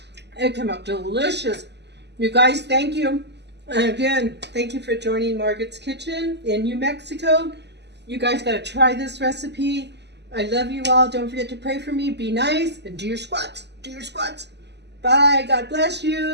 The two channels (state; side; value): late; left; 0.50 ms